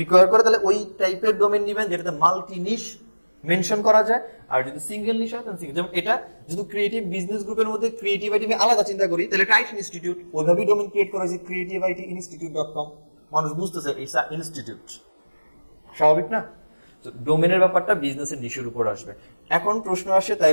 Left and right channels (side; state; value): both; inverted; correlation -1.00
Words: করে, তাহলে ওই টাইপের ডোমেন নিবেন যেটাতে মাল্টি নিশ মেনশন করা যায়। আর যদি সিঙ্গেল নিশ হয় তাহলে সিঙ্গেল, যেমন এটা যদি ক্রিয়েটিভ বিজনেস গ্রুপের মধ্যে ক্রিয়েটিভিটি আমি আলাদা চিন্তা করি, তাহলে টাইটন ইনস্টিটিউট ওইভাবেই ডোমেন ক্রিয়েট করা হয়েছে creativity.institute.com, মানুষ বুঝতেছে ইটস আ ইনস্টিটিউট, স্বাভাবিক না? তো ডোমেনের ব্যাপারটা বিজনেসের নিশের উপর আসবে। এখন প্রশ্ন আসে